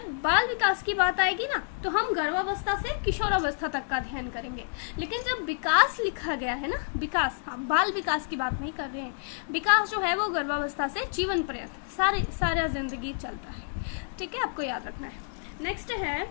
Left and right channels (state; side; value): silent; right; digital silence